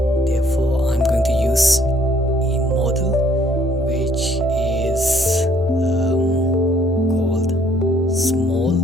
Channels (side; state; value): both; normal; correlation 0.63